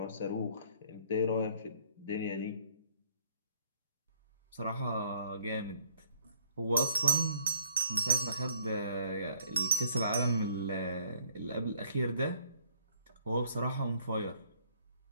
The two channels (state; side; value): inverted; both; correlation -0.60